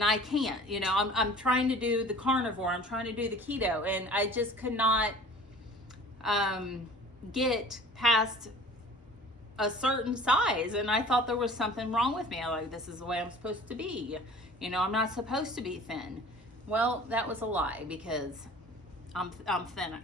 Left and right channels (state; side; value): normal; both; correlation 0.45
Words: I can't? You know, I'm trying to do the carnivore, I'm trying to do the keto, and I just could not get past a certain size, and I thought there was something wrong with me. I like, this is the way I'm supposed to be. You know, I'm not supposed to be thin. Well, that was a lie because I'm thin.